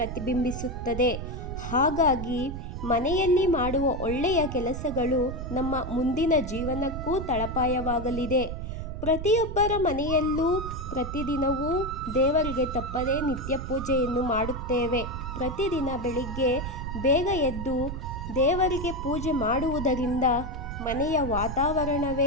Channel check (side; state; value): right; noise; rumble, 7 dB below the sound